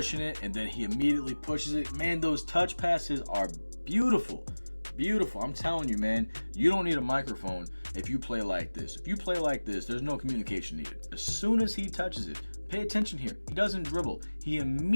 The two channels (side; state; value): both; inverted; correlation -1.00